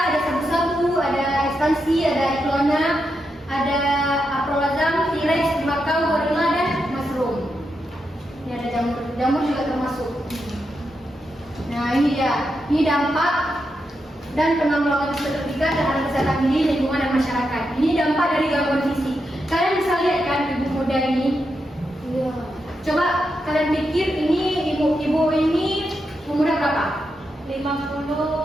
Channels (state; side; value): normal; both; correlation 0.85